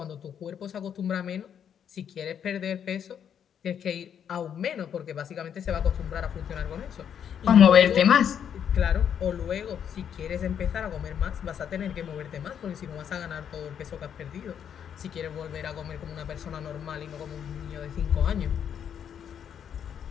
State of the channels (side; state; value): right; quieter; 8.5 dB